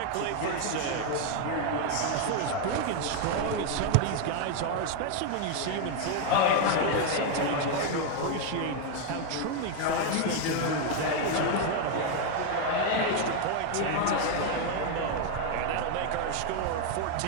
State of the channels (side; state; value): both; different; correlation 0.01